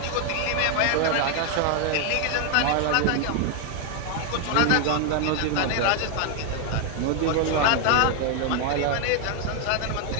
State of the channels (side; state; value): both; different; correlation 0.01